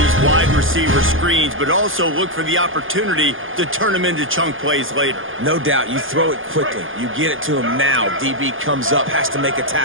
wide receiver screens, but also look for the opportunity to turn them into chunk plays later. No doubt. You throw it quickly. You get it to him now. DB comes up, has to make a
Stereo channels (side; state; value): left; late; 0.58 ms